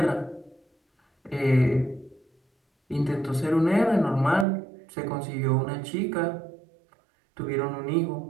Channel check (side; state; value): left; drops out; at 4.5 s